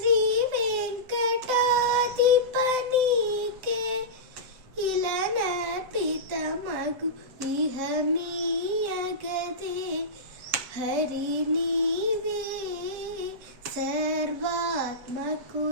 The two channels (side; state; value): left; late; 7.9 ms